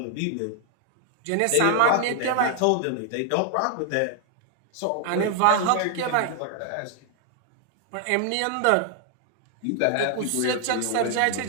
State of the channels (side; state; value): both; different; correlation 0.00